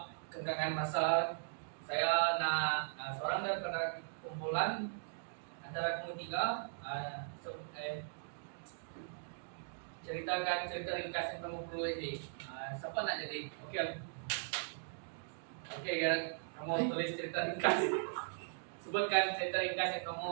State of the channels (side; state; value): left; silent; digital silence